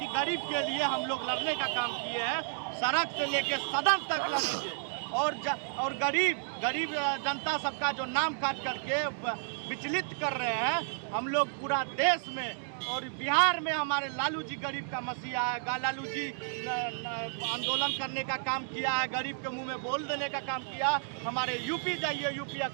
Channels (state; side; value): silent; left; digital silence